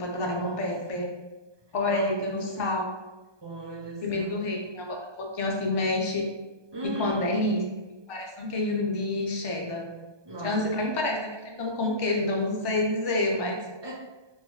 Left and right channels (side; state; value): left; late; 1.2 ms